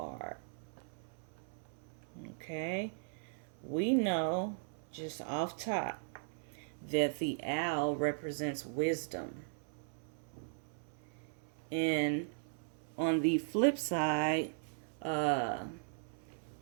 Okay, we know just off top that the owl represents wisdom, and on the flip side,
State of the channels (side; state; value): left; silent; 52 dB below the other